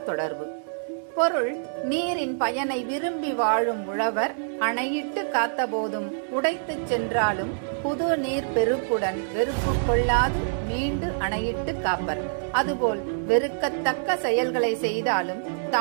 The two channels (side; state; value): left; silent; digital silence